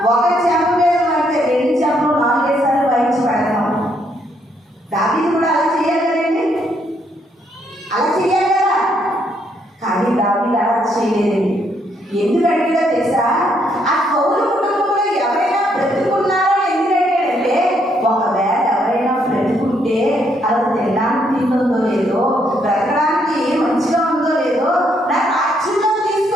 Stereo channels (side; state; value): both; normal; correlation 0.73